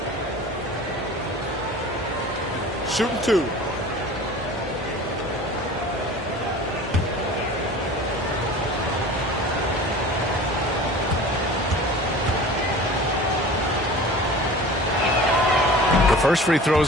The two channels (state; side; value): normal; both; correlation 0.40